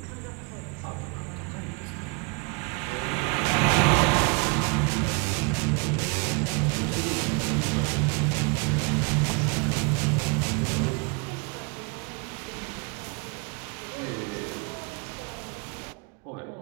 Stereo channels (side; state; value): left; quieter; 30.8 dB